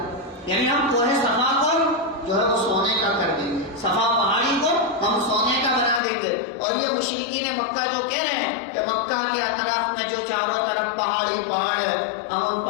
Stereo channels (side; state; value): right; drops out; at 6.0 s